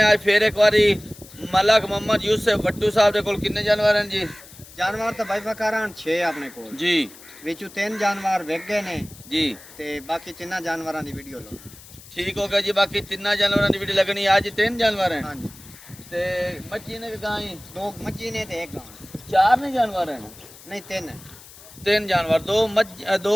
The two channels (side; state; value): left; noise; hiss, 20 dB below the sound